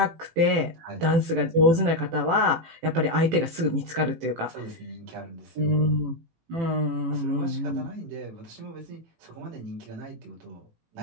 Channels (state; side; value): late; left; 18 ms